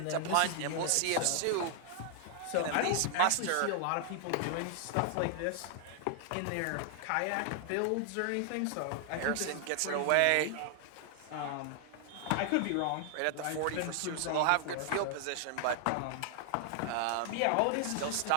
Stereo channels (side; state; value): both; different; correlation 0.00